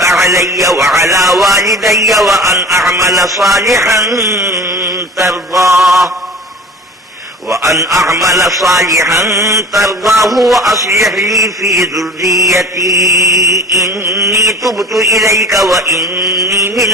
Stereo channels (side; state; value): both; normal; correlation 0.40